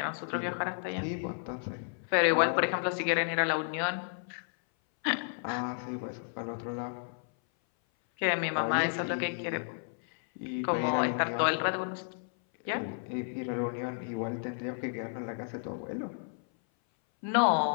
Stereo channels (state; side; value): silent; right; 56 dB below the other